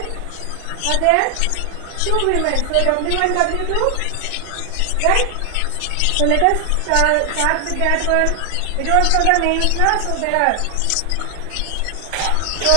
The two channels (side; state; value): both; different; correlation 0.00